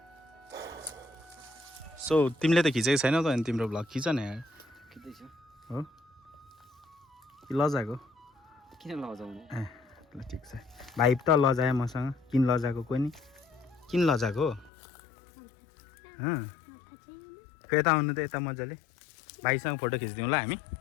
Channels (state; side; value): drops out; right; at 14.7 s